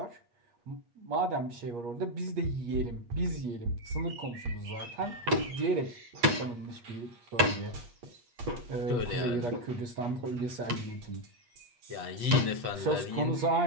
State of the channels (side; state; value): left; late; 8.3 ms